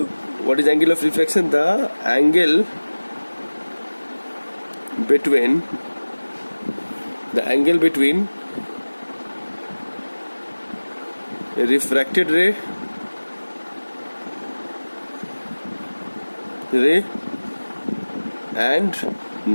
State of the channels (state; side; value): inverted; both; correlation -1.00